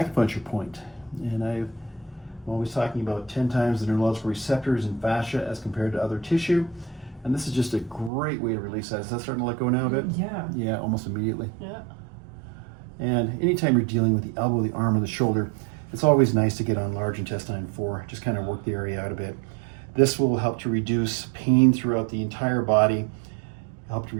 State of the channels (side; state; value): left; drops out; at 8.1 s